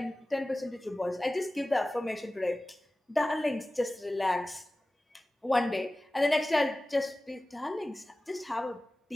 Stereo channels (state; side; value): normal; both; correlation 0.97